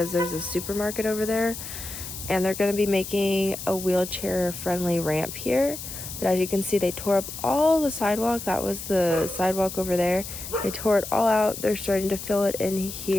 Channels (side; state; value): left; noise; hiss, 9 dB below the sound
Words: there's a supermarket over there, and they're going to be making a wheelchair-friendly ramp here. But as you can see, they tore up all the sidewalk. That was the sidewalk over there. They tore it all out. They're starting to fill it in